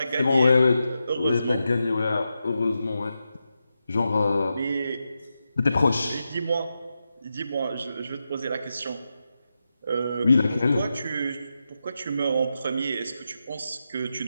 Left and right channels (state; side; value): inverted; both; correlation -0.89